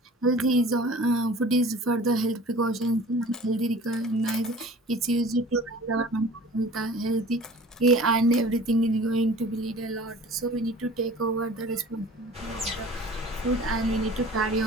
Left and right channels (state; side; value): normal; both; correlation 0.44